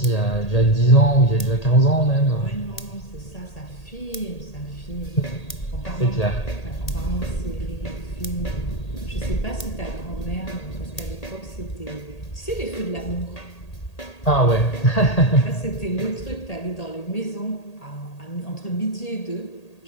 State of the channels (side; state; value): right; late; 1.8 ms